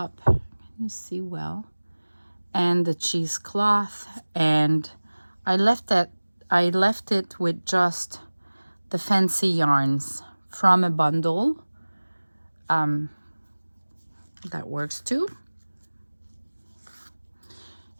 Can you see well? And the cheesecloth, and I left it with just the fancy yarns from a bundle. That works too.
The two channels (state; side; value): inverted; both; correlation -1.00